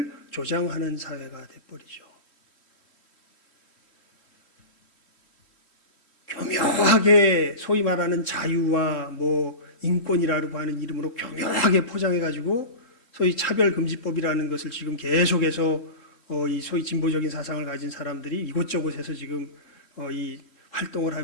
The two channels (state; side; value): late; right; 3.1 ms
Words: 조장하는 사회가 돼버리죠. 교묘하게 소위 말하는 자유와 뭐 인권이라고 하는 이름으로 교묘하게 포장해가지고 소위 차별금지법이라는 것을 지금 계속해서 이 소위 진보적인 사상을 가진 사람들이 이곳저곳에서 지금 이 활동을